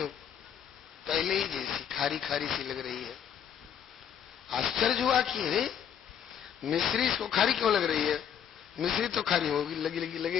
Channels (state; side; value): quieter; right; 8.7 dB